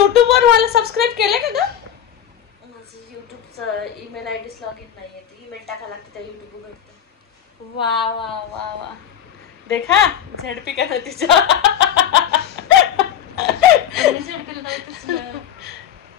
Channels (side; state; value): right; quieter; 9.6 dB